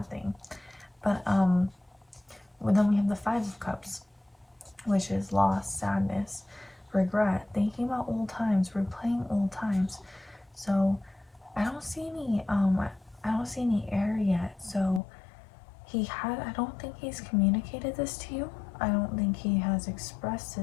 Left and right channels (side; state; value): right; drops out; at 15.0 s